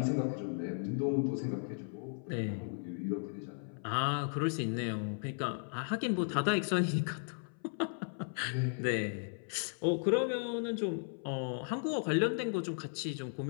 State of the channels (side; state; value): right; silent; 54 dB below the other